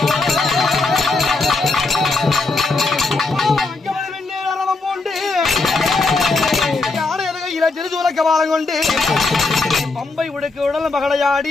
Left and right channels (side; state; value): right; quieter; 3.6 dB